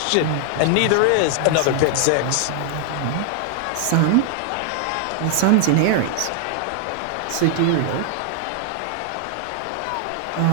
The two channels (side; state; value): both; different; correlation 0.00